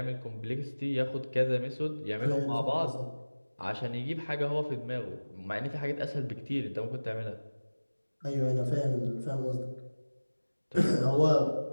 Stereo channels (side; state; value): both; inverted; correlation -1.00